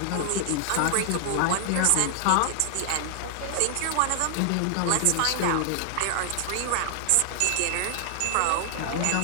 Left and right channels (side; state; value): both; different; correlation 0.00